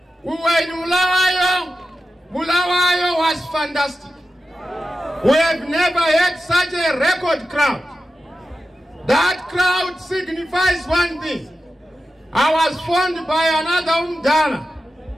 we were in Mulawayo. Mulawayo was fantastic. We have never had such a record crowd. That crowd signifies one thing. I was phoned by another Umdala.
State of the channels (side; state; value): both; normal; correlation 0.92